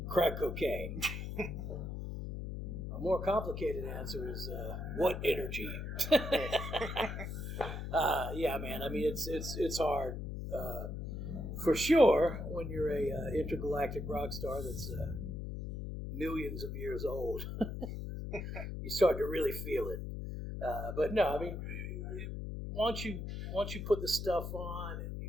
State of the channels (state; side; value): noise; left; hum, 5 dB below the sound